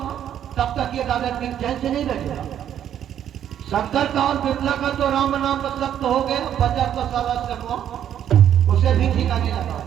तब तक ये दादा सिंह चैन से नहीं बैठेगा। शंकर का और बिमला का तो राम नाम मतलब तो हो गया, बचा तो सारा श्यामू उसे भी ठिकाने लगा।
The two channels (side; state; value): left; quieter; 10.1 dB